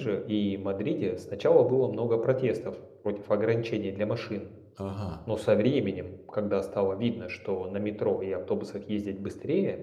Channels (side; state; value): both; identical; correlation 1.00